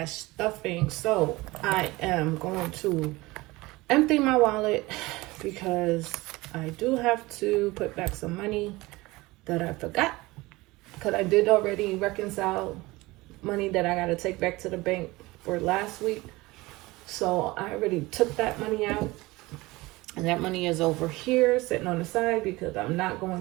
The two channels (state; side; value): quieter; left; 21.1 dB